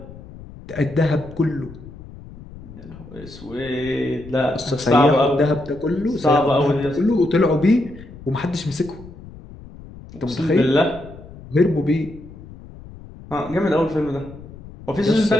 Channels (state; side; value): noise; left; rumble, 17 dB below the sound